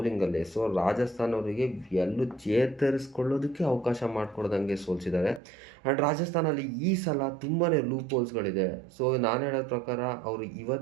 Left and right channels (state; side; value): drops out; left; at 5.4 s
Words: ಸೊ ರಾಜಸ್ಥಾನ್ ಅವರಿಗೆ ಎಲ್ಲೂ ಚೇತರಿಸ್ಕೊಳ್ಳೋದಕ್ಕೆ ಅವಕಾಶ ಮಾಡಿಕೊಡ್ದಂಗೆ ಸೋಲಿಸಿದ್ದಾರೆ. ಆ್ಯಂಡ್ ರಾಜಸ್ಥಾನಲ್ಲಿ ಈ ಸಲ ತುಂಬಾ ಲೂಪ್ ಹೋಲ್ಸ್ಗಳಿದೆ. ಸೊ ನಾನು ಹೇಳೋ ಪ್ರಕಾರ ಅವರು